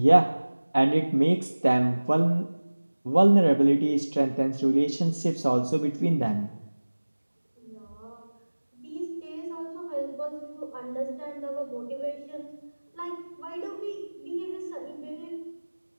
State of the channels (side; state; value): both; inverted; correlation -1.00